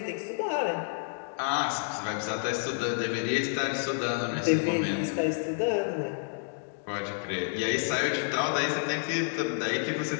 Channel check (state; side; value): silent; right; digital silence